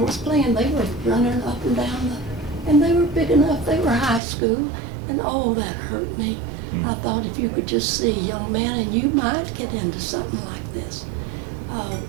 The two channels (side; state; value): left; drops out; at 4.2 s